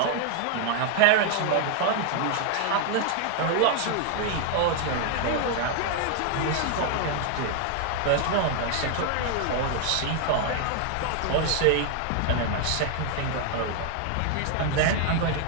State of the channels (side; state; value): both; different; correlation 0.00